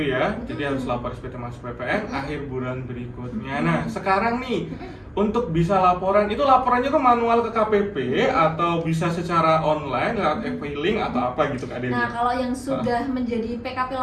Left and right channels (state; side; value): identical; both; correlation 1.00